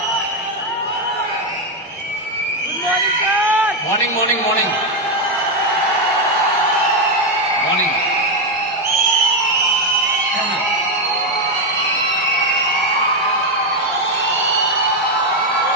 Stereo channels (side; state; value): both; normal; correlation 0.05